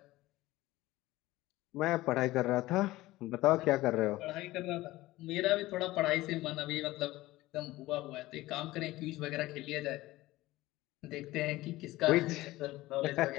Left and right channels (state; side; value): quieter; right; 18.0 dB